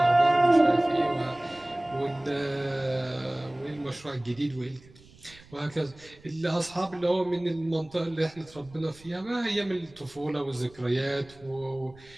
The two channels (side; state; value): right; noise; rumble, 24 dB below the sound